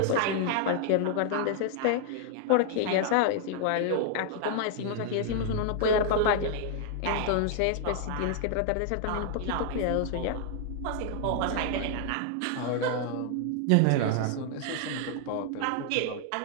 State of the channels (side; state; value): both; different; correlation 0.00